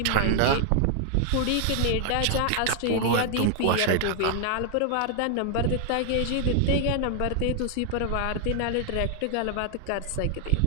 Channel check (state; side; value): different; both; correlation 0.00